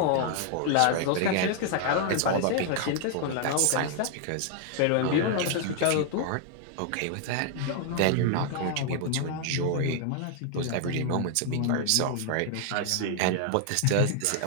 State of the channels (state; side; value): different; both; correlation 0.00